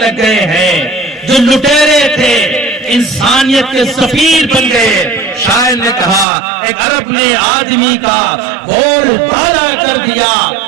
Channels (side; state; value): left; drops out; at 6.2 s